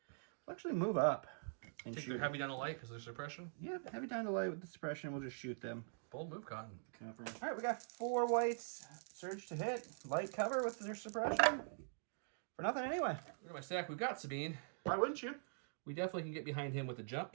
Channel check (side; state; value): left; silent; digital silence